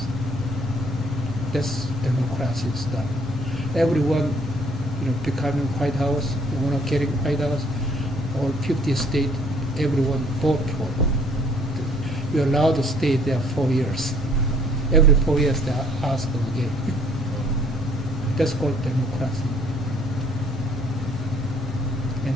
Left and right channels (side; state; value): left; noise; rumble, 14 dB below the sound